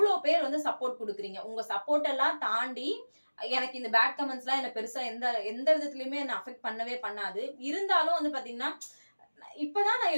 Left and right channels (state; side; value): inverted; both; correlation -1.00